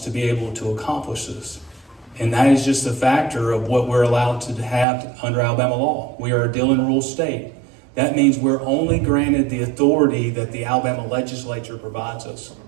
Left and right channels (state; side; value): drops out; left; at 4.9 s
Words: be able to accomplish this. And that is just a factor of what we're allowed to have under Alabama law. We are a deal and rule state. That means we're only granted the authority that the Alabama legislature provides us.